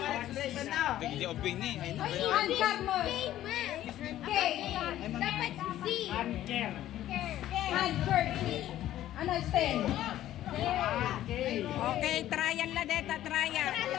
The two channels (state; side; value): quieter; right; 13.1 dB